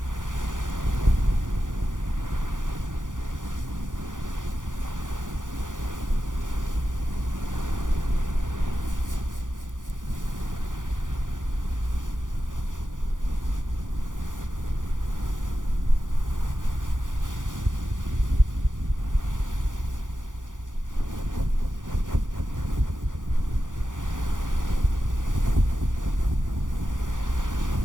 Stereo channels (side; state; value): left; late; 0.88 ms